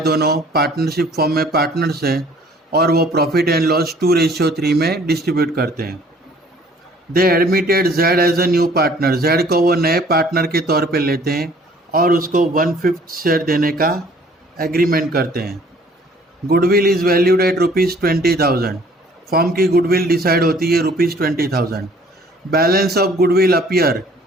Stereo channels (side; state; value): both; normal; correlation 0.56